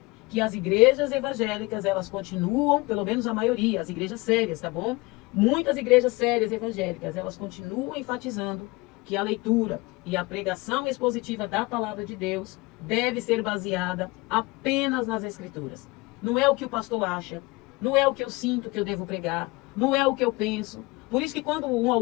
Que as igrejas evangélicas, elas continuam, pelo menos a maioria, as igrejas sérias, tá bom? Muitas igrejas sérias evangélicas, elas continuam enfatizando que a leitura e a pregação expositiva da palavra de Deus deve ser baseada apenas nas Escrituras. Não é o que o pastor acha, não é o que eu sinto que eu devo pregar, não é o que eu penso. Por isso que quando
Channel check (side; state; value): right; quieter; 23.8 dB